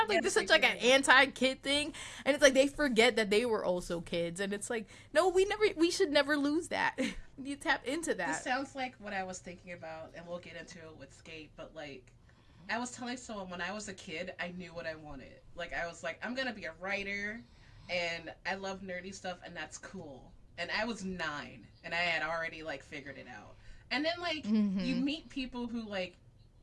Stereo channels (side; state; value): both; identical; correlation 1.00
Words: like this is such like an anti-kid thing, and it's like they forget that they were also kids, and it's like, no, we should never lose that. You tap into that. This sounds like what I was thinking about, and we'll get into it with Sk8, but like I was telling someone when I was a kid, I knew what I wanted. Like I was like, I'm gonna be a writer, and I love nerdy stuff, and that's cool. And I was 9, and I had already like figured it out. And then like you meet people who like,